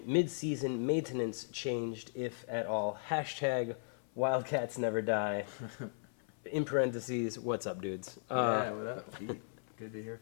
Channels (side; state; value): right; silent; 53 dB below the other